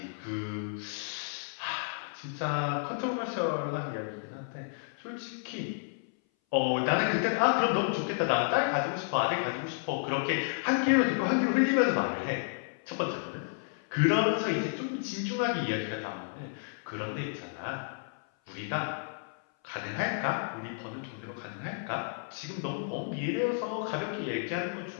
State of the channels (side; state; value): right; silent; 57 dB below the other